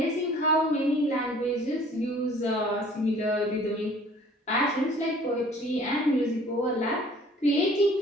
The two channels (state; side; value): normal; both; correlation 0.53